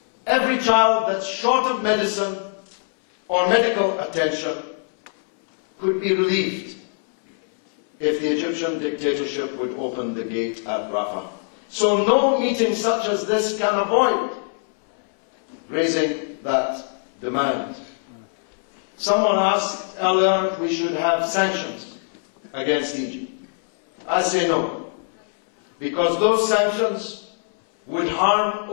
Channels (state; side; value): silent; right; 58 dB below the other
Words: every child that's short of medicine or medical attention could be relieved if the Egyptian dictatorship would open the gate at Rafah. So no meeting such as this can avoid raising that demand. Someone asked earlier if we should have sanctions against Egypt. I say no, because those sanctions would harm